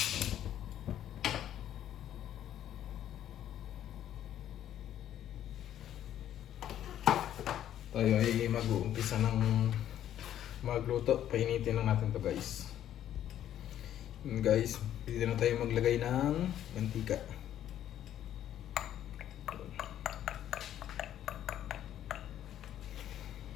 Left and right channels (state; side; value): quieter; right; 11.2 dB